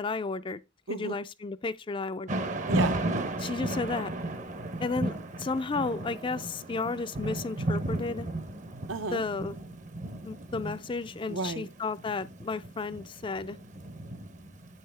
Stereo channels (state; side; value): normal; both; correlation 0.44